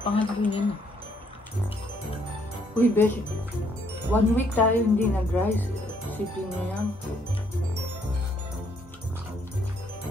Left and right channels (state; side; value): normal; both; correlation 0.69